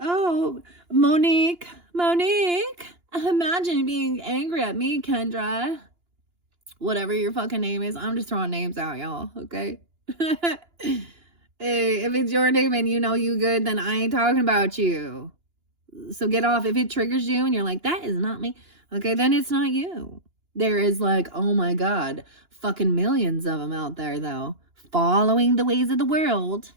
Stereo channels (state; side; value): late; left; 2.9 ms